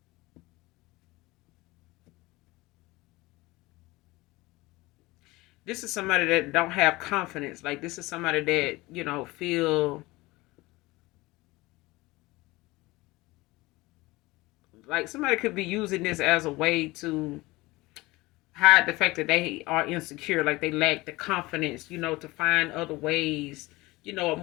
this is somebody that don't have confidence. Like this is somebody that, feel like somebody could be using this as a way to hide the fact that they are insecure, like they lack the confidence, to find other ways, a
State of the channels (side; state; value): right; quieter; 21.1 dB